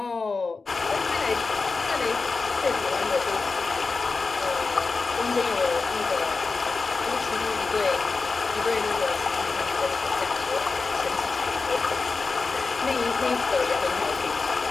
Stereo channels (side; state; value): right; quieter; 4.2 dB